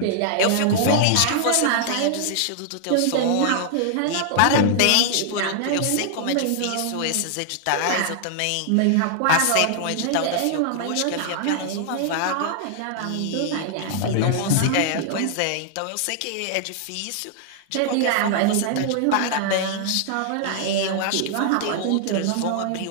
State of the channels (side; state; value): both; different; correlation -0.01